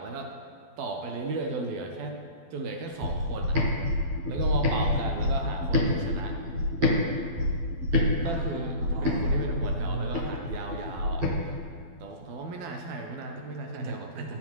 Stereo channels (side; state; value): left; late; 12 ms